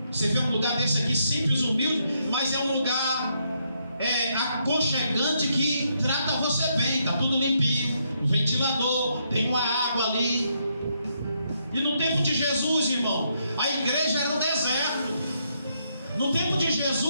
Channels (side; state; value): both; inverted; correlation -0.76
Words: você vê um lugar desse aqui simples, humilde, mas é um lugar aconchegante que trata você bem. Está tudo limpinho, um ventilador, tem uma água ali. E no tempo de Jesus, irmão, a igreja era um deserto. No tempo de